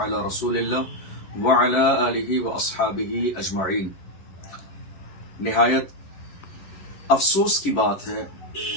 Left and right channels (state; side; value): late; right; 11 ms